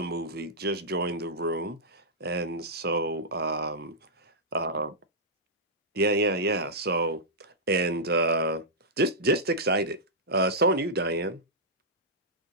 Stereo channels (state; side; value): normal; both; correlation -0.11